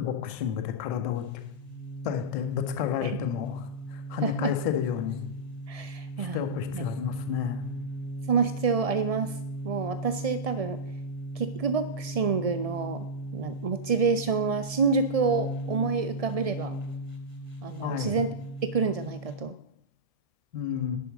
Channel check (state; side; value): late; left; 1.7 ms